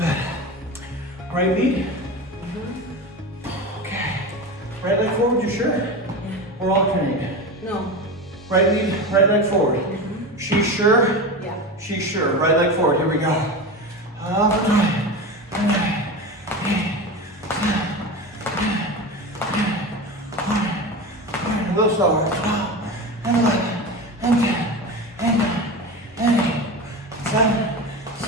Right lead. Okay. Right leg forward, you sure? Yeah. Or alternate? No. Right lead, right leg forward. She's sure? Yeah. She's sure. Right leg forward. Here we go. Up and right. And right. A little slower. 12, and 11, and 10, and 9, and 8, 7,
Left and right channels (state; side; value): normal; both; correlation 0.26